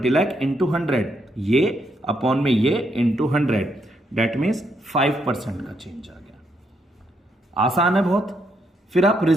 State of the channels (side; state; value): both; normal; correlation 0.76